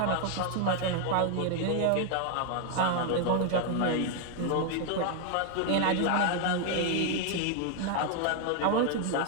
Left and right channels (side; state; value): both; different; correlation 0.00